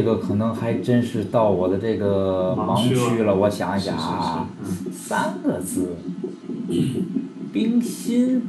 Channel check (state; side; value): identical; both; correlation 1.00